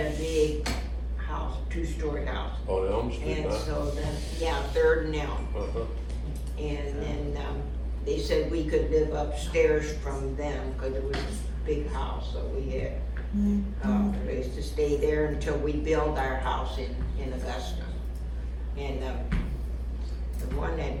a big house, 2-story house. On Elm Street, And huh? so then, yeah, 3rd and Elm. Uh-huh. And then, they said we could live upstairs from them, cause it was a big house, so we had, a place to stay there until we built our house in Augusta. And, the one that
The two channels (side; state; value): both; identical; correlation 1.00